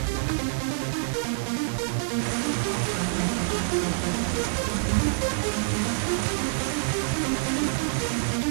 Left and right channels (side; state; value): left; silent; digital silence